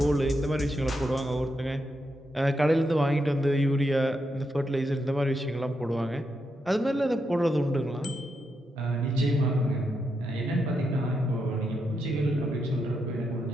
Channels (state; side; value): normal; both; correlation 0.83